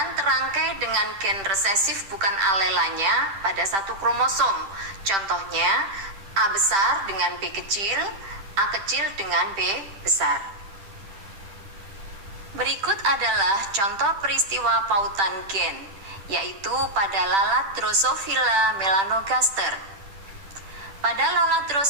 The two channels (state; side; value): late; left; 10 ms